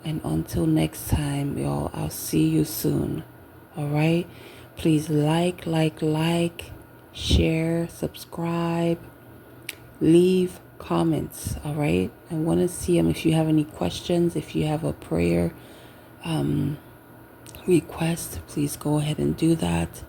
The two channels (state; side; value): identical; both; correlation 1.00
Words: and until next time, y'all, I'll see you soon. All right? Please like, share, subscribe, leave comments. All right? I want to see them. If you have any questions, if you have a prayer request, please go ahead and do that.